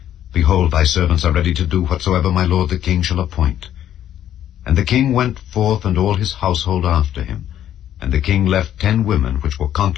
Behold, thy servants are ready to do whatsoever my lord the king shall appoint. And the king went forth, and all his household after him. And the king left 10 women which were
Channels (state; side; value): quieter; right; 11.1 dB